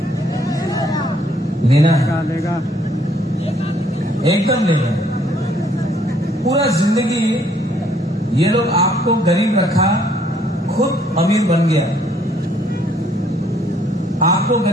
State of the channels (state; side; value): normal; both; correlation 0.65